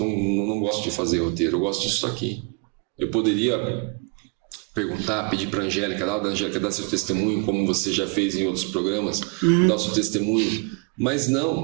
gosto de fazer roteiro, eu gosto disso aqui. Eu poderia perguntar, pedir para a Angélica, dar seu testemunho, como você já fez em outros programas, dar o seu testemunho. Mas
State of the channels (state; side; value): quieter; left; 32.3 dB